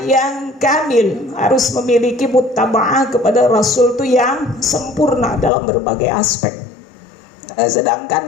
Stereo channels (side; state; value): right; drops out; at 5.5 s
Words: yang kamil, harus memiliki muttaba'ah kepada Rasul itu yang sempurna dalam berbagai aspek.